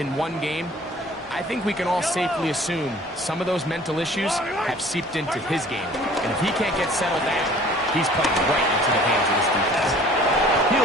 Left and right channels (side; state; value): both; normal; correlation 0.50